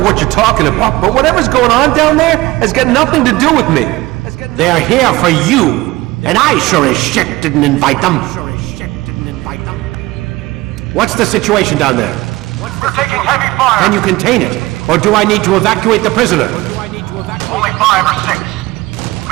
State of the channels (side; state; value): left; quieter; 19.5 dB